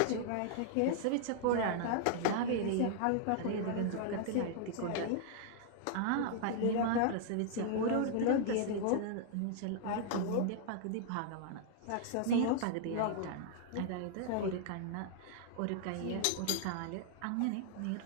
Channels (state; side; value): different; both; correlation -0.01